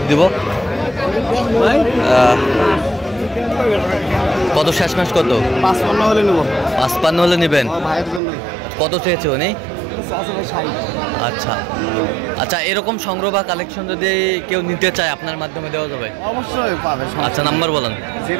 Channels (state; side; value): drops out; left; at 8.2 s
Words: দিব। কত শেষ মাস? কত? 55 হলে নেব। 55 হলে নেবেন? ভাইয়ের জন্য। কত চেয়েছে উনি? আচ্ছা আচ্ছা, এরকম সংগ্রহ বা কালেকশন যদি কেউ নিতে চায় আপনার মাধ্যমে দেওয়া যাবে? অবশ্যই পাবে। আচ্ছা নাম্বার বলেন।